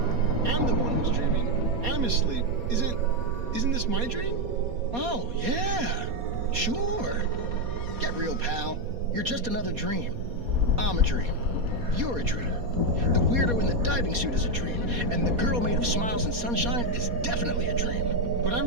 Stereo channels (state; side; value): late; left; 4.2 ms